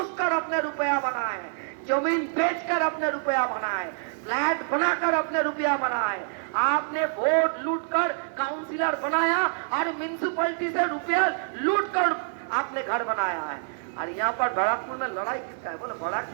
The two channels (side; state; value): left; silent; 56 dB below the other